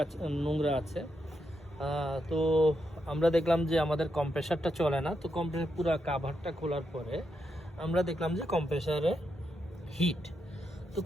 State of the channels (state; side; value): normal; both; correlation 0.83